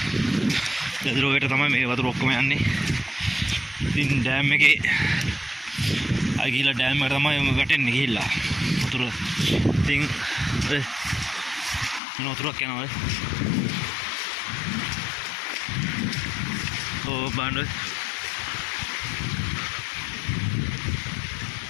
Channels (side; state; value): right; drops out; at 12.0 s